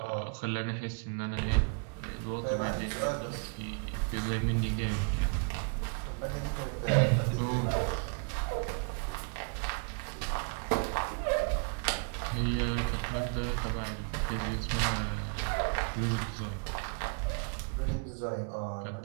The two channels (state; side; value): quieter; left; 39.8 dB